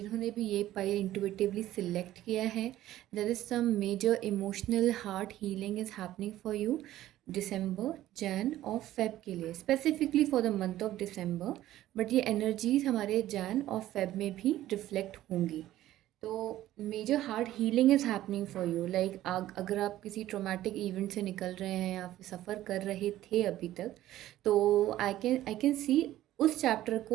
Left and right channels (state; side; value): quieter; left; 14.1 dB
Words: भी ये पाइल इंटुइटिवली सिलेक्ट किया है, there is some major emotional heart healing is happening for you December, Jan और Feb के लिए, specifically for the month of December. But ये energies हमारे जैन और फेब में भी रिफ्लेक्ट होंगी। तो major heart healing is happening for you, like अगर आप किसी ट्रोमेटिक इवेंट से निकल रहे हैं या फिर सफ़र कर रहे थे अभी तक, तो आई कैन सी उस चैप्टर